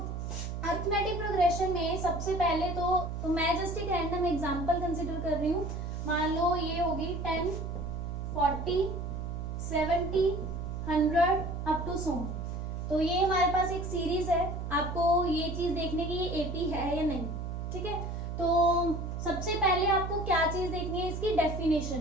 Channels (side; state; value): right; noise; hum, 5 dB below the sound